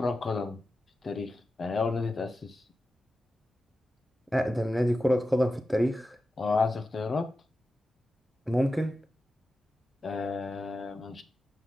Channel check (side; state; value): both; normal; correlation 0.92